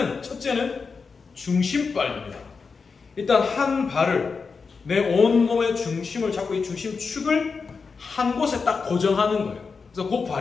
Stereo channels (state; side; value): quieter; right; 5.0 dB